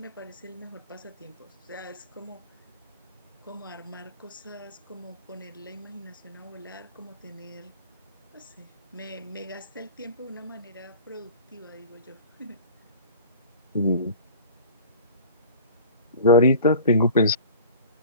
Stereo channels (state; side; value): inverted; both; correlation -0.41